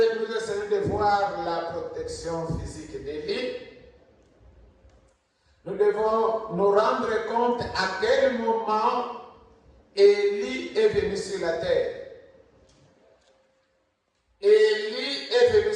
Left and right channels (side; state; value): both; identical; correlation 1.00